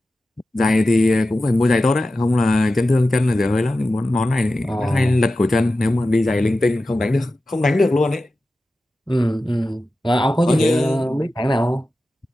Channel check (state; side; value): normal; both; correlation 0.93